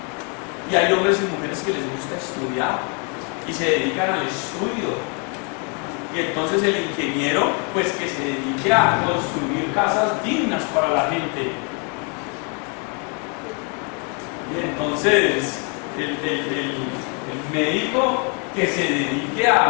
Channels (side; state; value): right; quieter; 36.5 dB